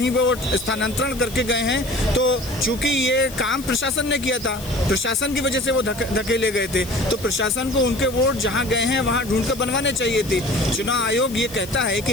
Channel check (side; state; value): left; noise; hiss, 15 dB below the sound